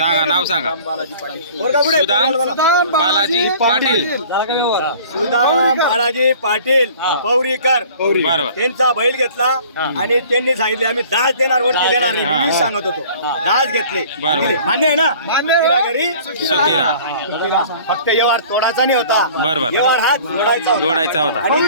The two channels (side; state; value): both; inverted; correlation -0.48